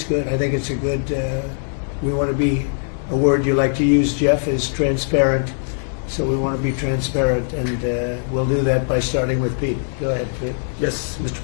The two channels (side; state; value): right; silent; 58 dB below the other